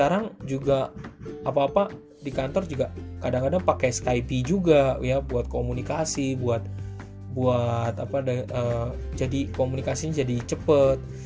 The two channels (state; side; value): identical; both; correlation 1.00